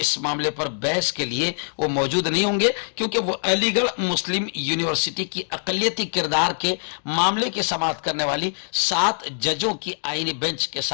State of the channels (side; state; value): right; silent; digital silence